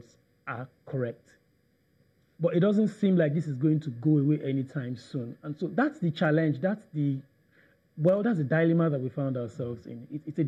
are correct. But it doesn't seem like this is going to go away anytime soon. And so that's the challenge. That's the dilemma that we found ourselves in. It's a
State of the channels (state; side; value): identical; both; correlation 1.00